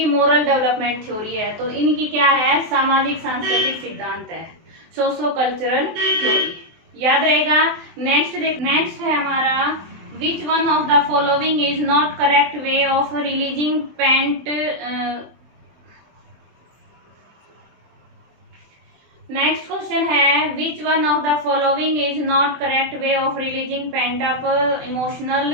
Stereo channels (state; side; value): late; left; 24 ms